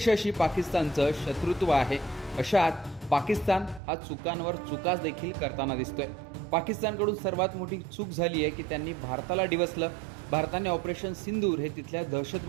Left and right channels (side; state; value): left; drops out; at 3.8 s